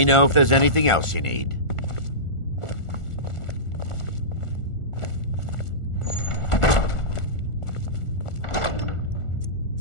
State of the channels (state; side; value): late; right; 1.4 ms